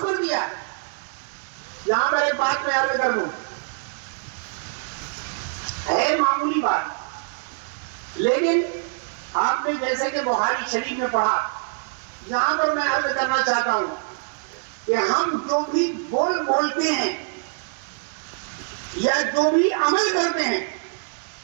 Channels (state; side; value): silent; left; digital silence